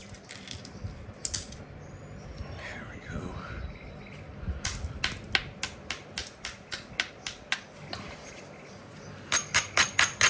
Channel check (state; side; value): identical; both; correlation 1.00